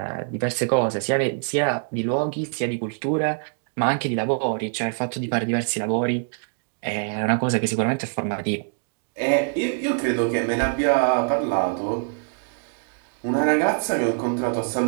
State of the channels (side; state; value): left; silent; 62 dB below the other